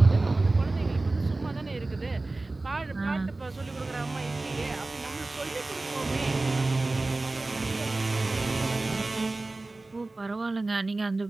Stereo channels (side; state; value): left; quieter; 3.1 dB